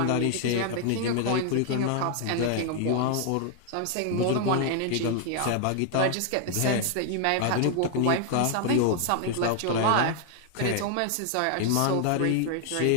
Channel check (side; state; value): both; different; correlation 0.00